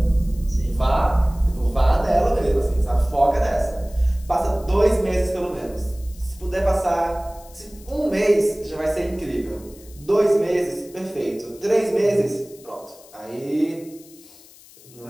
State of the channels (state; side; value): noise; left; hiss, 23 dB below the sound